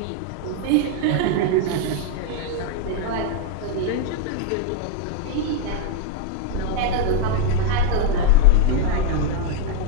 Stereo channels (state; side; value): different; both; correlation 0.00